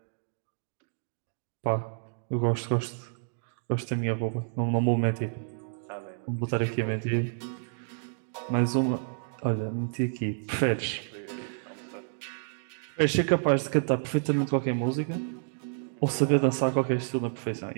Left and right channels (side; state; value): left; silent; digital silence